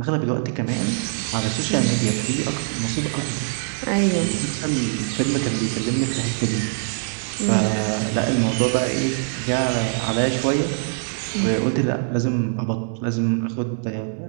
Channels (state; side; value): silent; left; digital silence